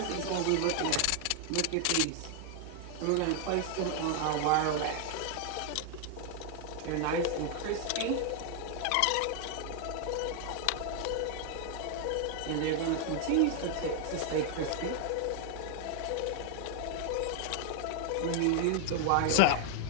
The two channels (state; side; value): different; both; correlation 0.00